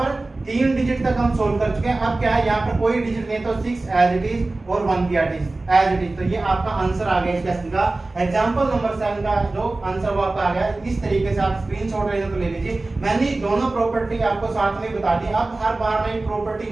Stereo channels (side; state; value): left; quieter; 3.1 dB